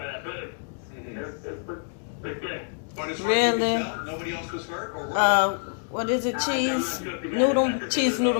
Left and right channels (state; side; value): silent; right; digital silence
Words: that bridge. It was pretty good. But as far as you can tell, nobody else was hurt? Or what is it? Cheese